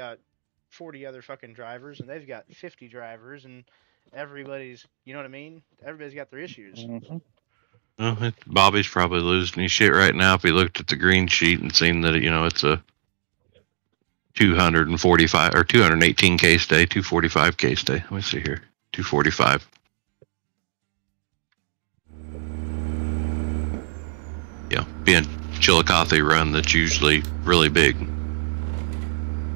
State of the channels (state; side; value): silent; left; digital silence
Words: 40 other fucking drivers and they've got 50 drivers and everybody's, you know what I mean? Everybody's got their issues. Well, Bobby's probably losing his shit right now if he looked at the green sheet and seen that, you know, it's a 245 or 218 case day, 245 case day. Let me see here. 245. Yeah, being Chillicothe run, that's usually really big.